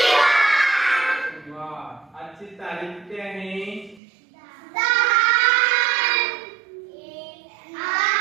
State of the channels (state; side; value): drops out; left; at 4.0 s